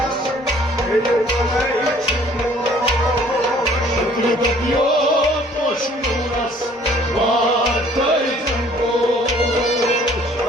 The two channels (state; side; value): normal; both; correlation 0.56